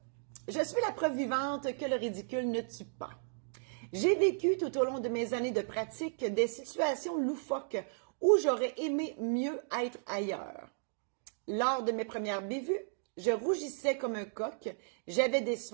Je suis la preuve vivante que le ridicule ne tue pas. J'ai vécu tout au long de mes années de pratique des situations loufoques où j'aurais aimé mieux être ailleurs. Lors de mes premières bévues, je rougissais comme un coq, j'avais des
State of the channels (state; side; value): silent; left; digital silence